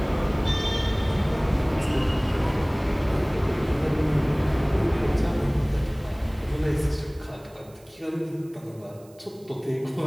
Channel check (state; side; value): noise; right; hiss, 28 dB below the sound